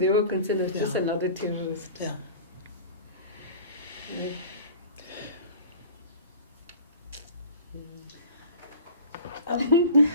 were concerned as just another terrorist. Yeah.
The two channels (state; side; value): inverted; both; correlation -0.40